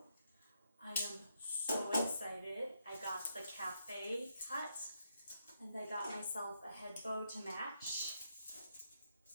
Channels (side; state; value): both; inverted; correlation -0.79